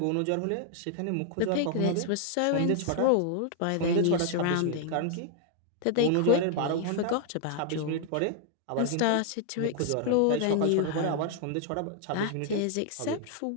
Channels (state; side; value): different; both; correlation 0.00